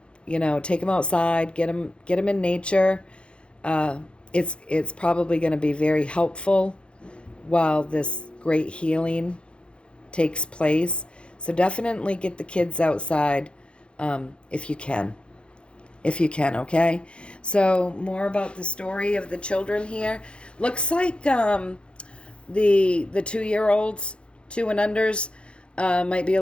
them outside, get them in nature. It's probably going to be very helpful while this great healing takes place. So definitely get the kids outside if you can. Okay? So more about the story of the children here. Looks like the 2-year-olds, 2 and unders, might be a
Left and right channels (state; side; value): late; right; 0.057 ms